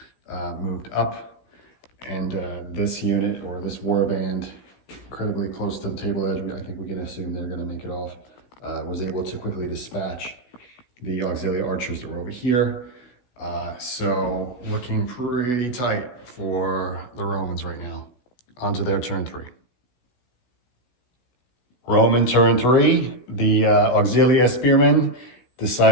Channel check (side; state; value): right; late; 16 ms